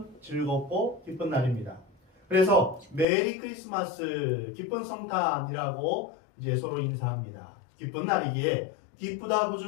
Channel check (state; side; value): drops out; right; at 3.1 s